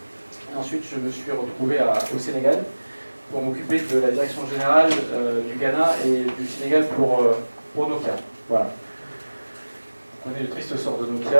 Et ensuite, je me suis retrouvé au Sénégal pour m'occuper de la direction générale du Ghana et du Sénégal pour Nokia. Voilà. On connaît le triste sort de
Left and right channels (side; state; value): both; inverted; correlation -1.00